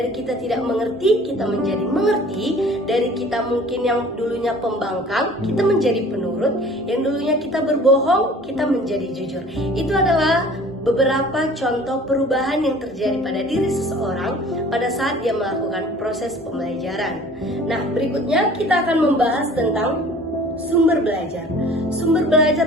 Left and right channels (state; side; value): normal; both; correlation 0.48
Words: kita tidak mengerti, kita menjadi mengerti, dari kita mungkin yang dulunya pembangkang, kita menjadi penurut, yang dulunya kita berbohong, kita menjadi jujur. Itu adalah beberapa contoh perubahan yang terjadi pada diri seseorang pada saat dia melakukan proses pembelajaran. Nah, berikutnya kita akan membahas tentang sumber belajar. Sumber